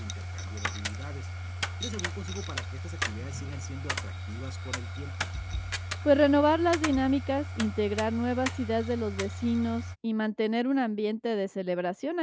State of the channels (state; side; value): identical; both; correlation 1.00